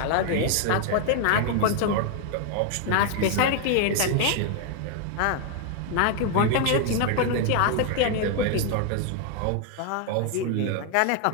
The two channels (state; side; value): different; both; correlation 0.00